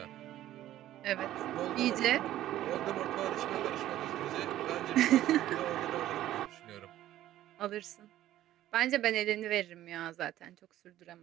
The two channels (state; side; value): quieter; left; 13.5 dB